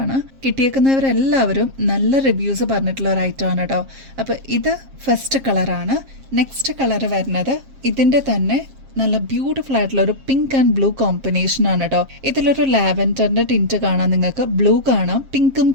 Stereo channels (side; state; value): left; late; 7.5 ms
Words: ആണ്. കിട്ടിയേക്കുന്നവരെല്ലാവരും നല്ല റിവ്യൂസ് പറഞ്ഞിട്ടുള്ള ഒരു ഐറ്റം ആണ് കേട്ടോ. അപ്പൊ ഇത് ഫസ്റ്റ് കളറാണ്. നെക്സ്റ്റ് കളർ വരുന്നത് ഇതിന്റെ തന്നെ നല്ല ബ്യൂട്ടിഫുൾ ആയിട്ടുള്ള ഒരു പിങ്ക് ആൻഡ് ബ്ലൂ കോമ്പിനേഷൻ ആണ് കേട്ടോ. ഇതിലൊരു ലാവൻഡറിന്റെ ടിന്റ് കാണാം, നിങ്ങൾക്ക് ബ്ലൂ കാണാം, പിങ്കും